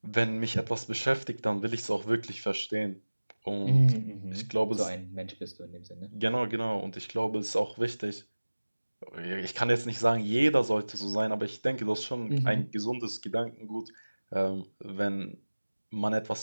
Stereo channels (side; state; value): both; inverted; correlation -1.00